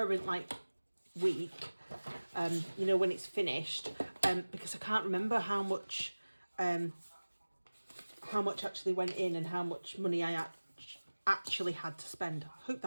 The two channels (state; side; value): inverted; both; correlation -1.00